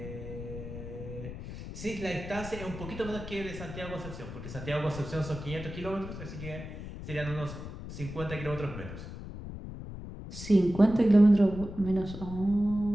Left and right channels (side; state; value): left; noise; rumble, 10 dB below the sound